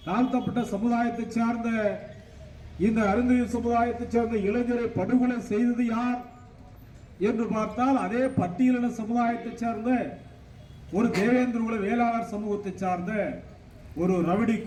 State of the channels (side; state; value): both; identical; correlation 1.00